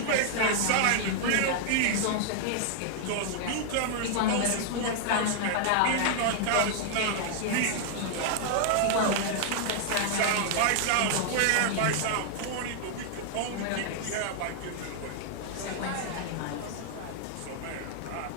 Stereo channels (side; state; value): both; different; correlation 0.00